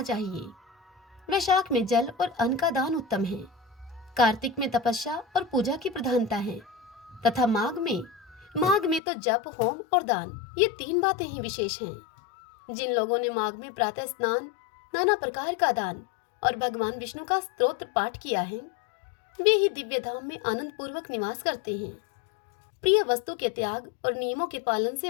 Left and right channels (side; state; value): right; drops out; at 9.0 s